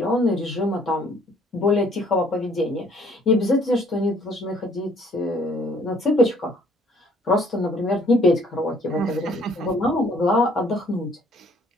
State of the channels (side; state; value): both; normal; correlation 0.60